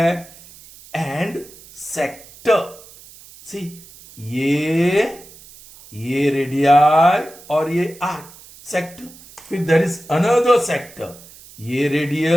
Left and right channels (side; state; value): right; noise; hiss, 21 dB below the sound